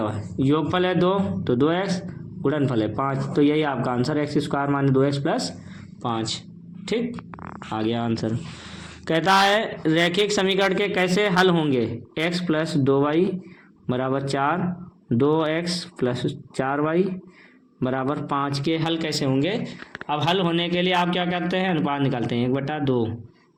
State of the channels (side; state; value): both; identical; correlation 1.00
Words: हुआ है, योगफल है 2, तो 2x, गुणनफल है 5, तो यही आपका आंसर x² - 2x + 5। ठीक, आ गया आंसर। कहता है रैखिक समीकरण के कैसे हल होंगे, x + 2y = 4, 2x + 4y = 5 के हल कैसे होंगे। अब हल होने के लिए आप क्या करते हैं, अनुपात निकालते हैं, 1/2,